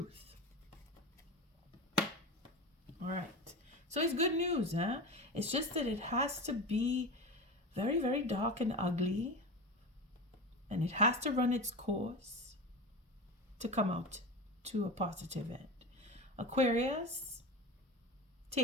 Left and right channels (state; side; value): normal; both; correlation 0.26